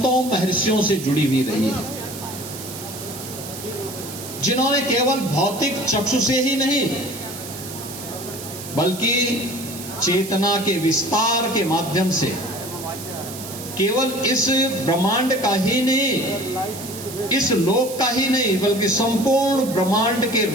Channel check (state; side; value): noise; right; hiss, 11 dB below the sound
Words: महर्षियों से जुड़ी हुई रही है, जिन्होंने केवल भौतिक चक्षु से ही नहीं बल्कि चेतना के विस्तार के माध्यम से केवल इस ब्रह्मांड का ही नहीं, इस लोक का ही नहीं, बल्कि संपूर्ण ब्रह्मांड के